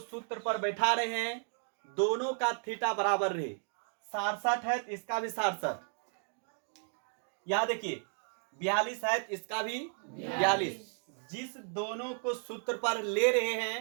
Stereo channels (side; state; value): left; silent; 55 dB below the other